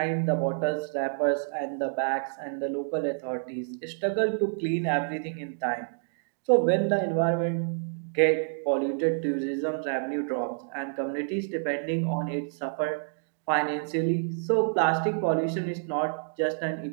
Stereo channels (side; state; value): left; silent; digital silence